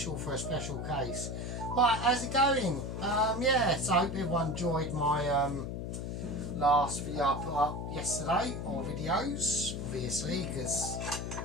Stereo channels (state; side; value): noise; left; hum, 5 dB below the sound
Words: for a special case. Right, how's it going? Yeah, so I hope everyone enjoyed my last video I put up yesterday, or videos, obviously, because